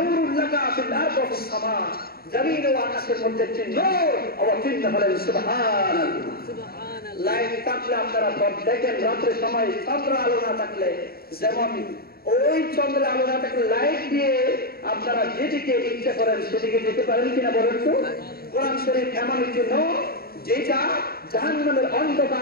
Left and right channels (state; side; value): late; right; 0.44 ms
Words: লাকা ফিল আরদি ওয়া ফিস সামা, জমিন ও আকাশের মধ্যে একটি নূর। অবতীর্ণ হলেন সুবহানাল্লাহ। লাইট থাকলে আপনারা দেখেন রাত্রে সময় চন্দ্র আলো না থাকলে, যেমন ওই চন্দ্রের আলো না থাকলে লাইট দিয়ে আপনারা যেদিকে ইচ্ছা করেন সেদিকে যেতে পারেন কিনা বলেন তো? কোরআন শরীফ এমন একটি নূর যেটা জাহান্নামের